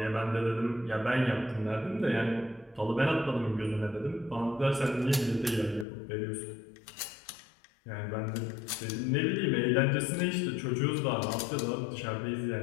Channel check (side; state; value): right; drops out; at 5.9 s